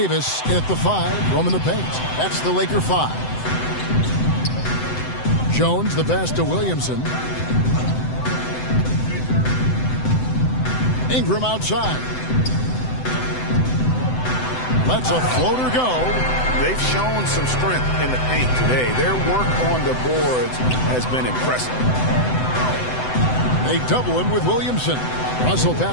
in at the 5, roaming the paint. That's the Laker 5. Jones, the pass to Williamson. Ingram outside. Lets a floater go. They've shown some strength in the paint today. Their work on the boards has been impressive. They double him with Williamson. Russell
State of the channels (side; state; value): right; late; 7.9 ms